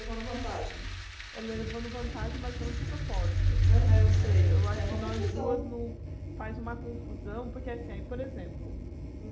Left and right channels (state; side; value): identical; both; correlation 1.00